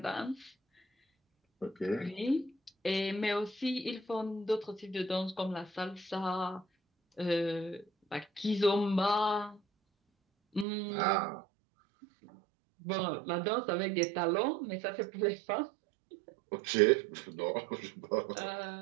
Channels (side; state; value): left; drops out; at 10.7 s